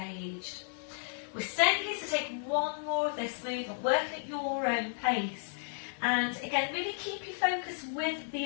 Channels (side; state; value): right; silent; digital silence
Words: We're staying here to take one more of this movement, working at your own pace. And again, really keep your focus with